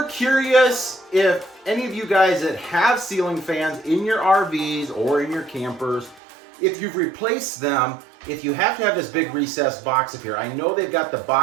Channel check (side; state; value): left; drops out; at 6.2 s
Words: curious if any of you guys that have ceiling fans in your RVs or in your campers, if you've replaced them, if you have to have this big recessed box up here. I know they've got the